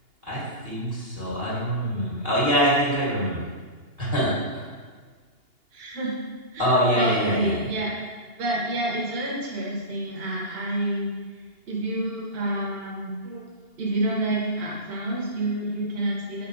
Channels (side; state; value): left; late; 2.8 ms